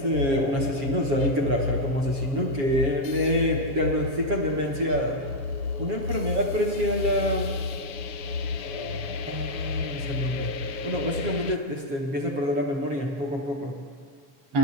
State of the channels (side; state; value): left; late; 7.1 ms